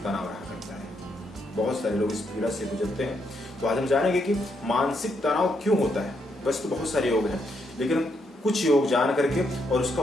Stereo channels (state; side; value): normal; both; correlation 0.77